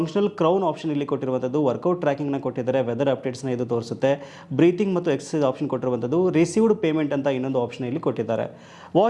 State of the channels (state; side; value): identical; both; correlation 1.00